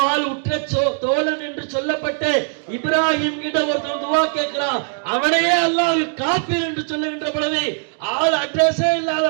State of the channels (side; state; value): left; silent; 66 dB below the other